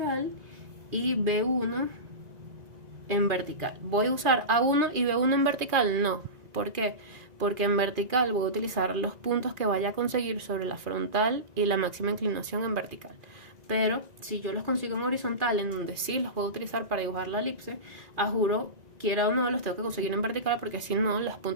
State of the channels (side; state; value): left; late; 1.9 ms